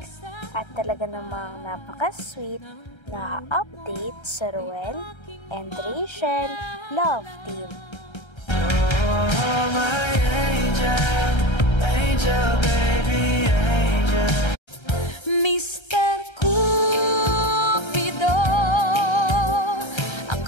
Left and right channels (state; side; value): late; right; 1.3 ms